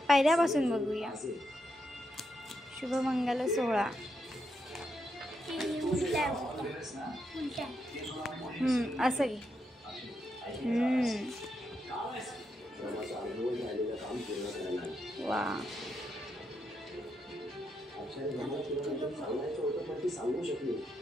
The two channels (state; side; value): normal; both; correlation 0.82